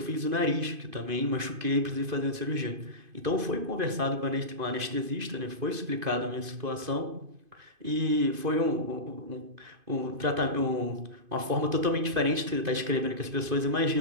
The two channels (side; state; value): left; late; 2.5 ms